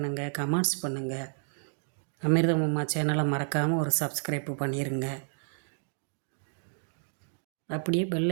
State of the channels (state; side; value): silent; left; 57 dB below the other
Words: கமெண்ட்ஸ் பண்ணுங்கள். அமிர்தம் அம்மா சேனலை மறக்காமல் ஒரு சப்ஸ்கிரைப் பண்ணிடுங்க. அப்படியே